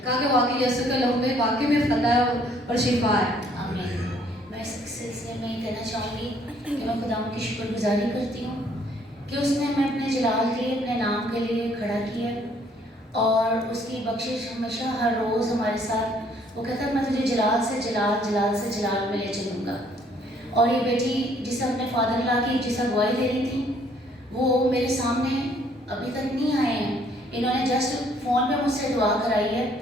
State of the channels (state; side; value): normal; both; correlation 0.63